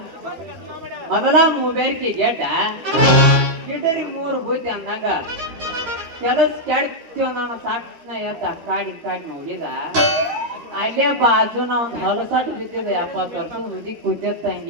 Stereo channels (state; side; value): late; left; 13 ms